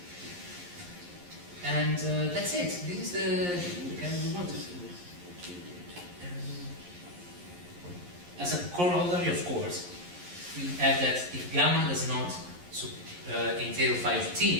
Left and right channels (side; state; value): left; late; 11 ms